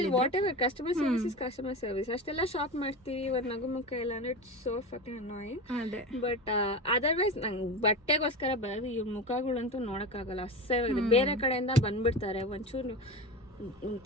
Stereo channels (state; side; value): normal; both; correlation 0.26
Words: What ever, customer service is customer service. ಅಷ್ಟೆಲ್ಲ ಶಾಪ್ ಮಾಡ್ತೀವಿ, ಒಂದು ನಗು ಮುಖ ಇಲ್ಲ ಅಂದ್ರೆ ಇಟ್ಸ್ ಸೋ ಫಕಿಂಗ್ ಅನಾಯಿಂಗ್. ಅದೇ. ಬಟ್ ಅದರ್ವೈಸ್ ನಂಗೆ ಬಟ್ಟೆಗೋಸ್ಕರ ಬರೋದು ಇವ್ರ ಮುಖಗಳಂತೂ ನೋಡಕ್ಕಾಗಲ್ಲ, ಅಸಹ್ಯವಾಗಿದೆ. ಬೇರೆ ಕಡೆಯಿಂದ ಬಂದ್ಬಿಡ್ತಾರೆ, ಒಂಚೂರು